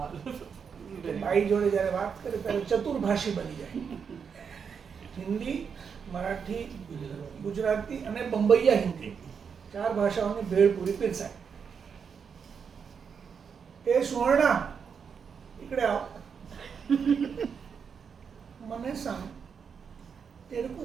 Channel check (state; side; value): quieter; left; 6.5 dB